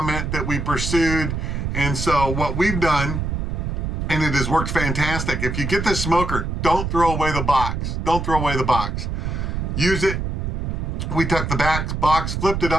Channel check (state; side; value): noise; right; rumble, 2 dB below the sound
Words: that we pursued, and so what we've done, and it has worked fantastic. If you get this smoker, don't throw away the box. Don't throw away the box. Use it. We took the box, flipped it